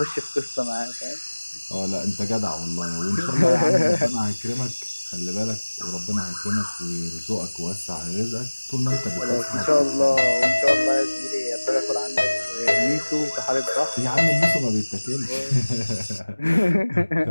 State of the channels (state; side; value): inverted; both; correlation -1.00